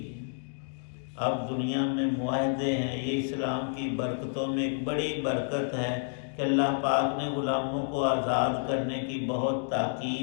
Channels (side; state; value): right; silent; digital silence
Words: ہے۔ اب دنیا میں معاہدے ہیں، یہ اسلام کی برکتوں میں ایک بڑی برکت ہے کہ اللہ پاک نے غلاموں کو آزاد کرنے کی بہت